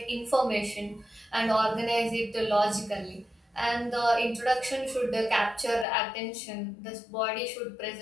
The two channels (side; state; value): right; drops out; at 5.9 s